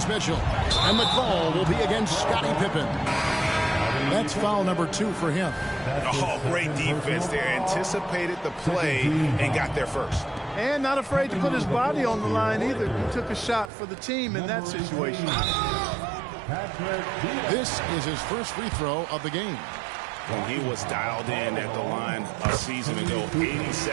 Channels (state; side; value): drops out; left; at 13.7 s